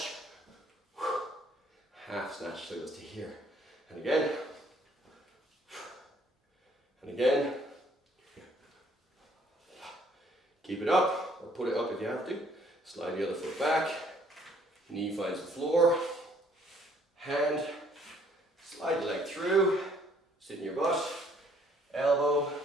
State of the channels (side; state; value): both; normal; correlation 0.63